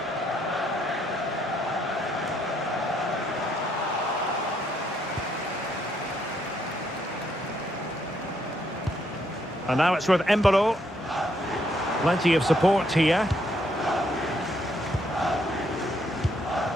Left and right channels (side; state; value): both; normal; correlation 0.73